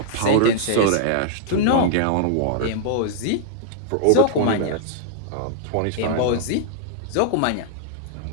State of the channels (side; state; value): both; different; correlation 0.00